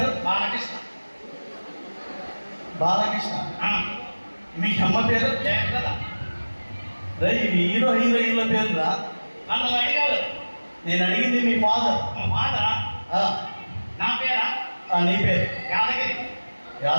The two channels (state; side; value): inverted; both; correlation -1.00